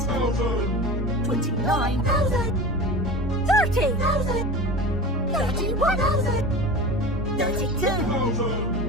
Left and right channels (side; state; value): both; normal; correlation 0.32